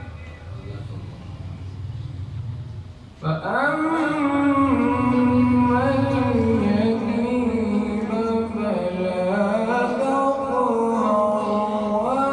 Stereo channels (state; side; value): identical; both; correlation 1.00